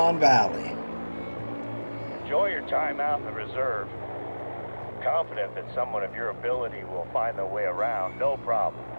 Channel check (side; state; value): both; inverted; correlation -1.00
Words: Valley. Enjoy your time out in the reserve. Confident that someone of your ability will find their way around, no problem.